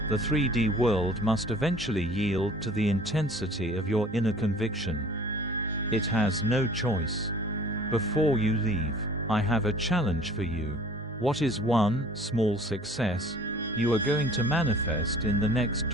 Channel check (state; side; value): normal; both; correlation 0.49